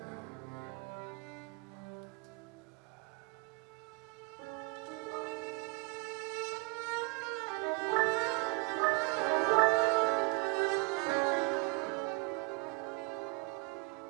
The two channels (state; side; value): quieter; left; 28.6 dB